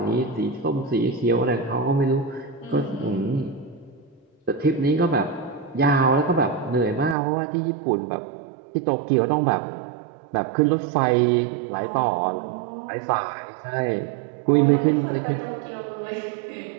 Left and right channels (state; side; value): drops out; left; at 7.2 s